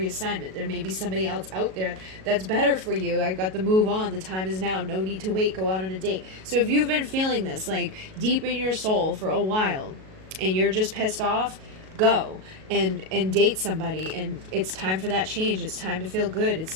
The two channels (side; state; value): left; late; 37 ms